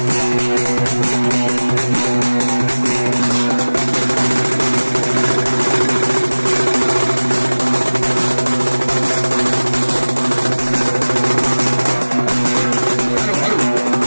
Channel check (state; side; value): inverted; both; correlation -1.00